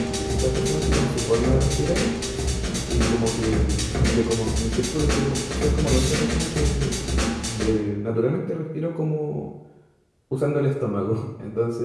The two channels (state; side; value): identical; both; correlation 1.00